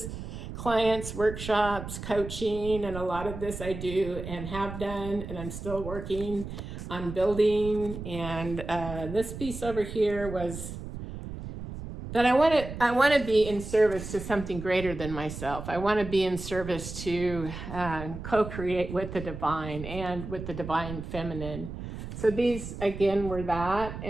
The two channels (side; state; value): right; noise; rumble, 9 dB below the sound